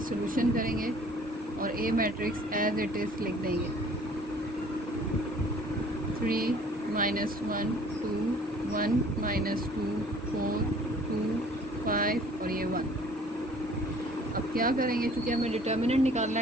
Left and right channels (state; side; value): normal; both; correlation 0.53